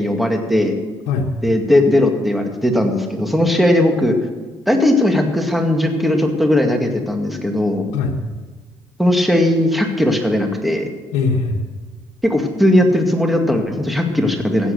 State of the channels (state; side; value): normal; both; correlation 0.78